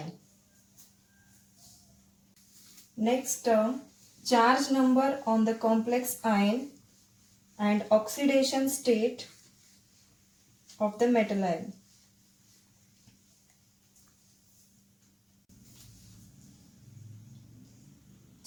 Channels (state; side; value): identical; both; correlation 1.00